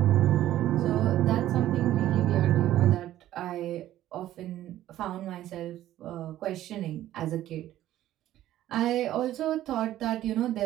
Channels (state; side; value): quieter; left; 13.4 dB